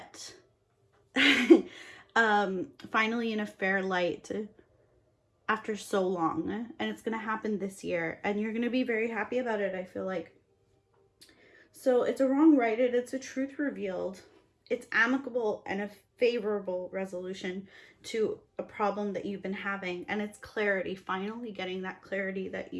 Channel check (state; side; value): identical; both; correlation 1.00